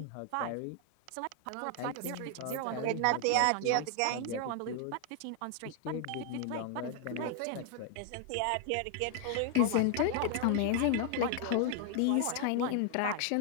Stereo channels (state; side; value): different; both; correlation 0.00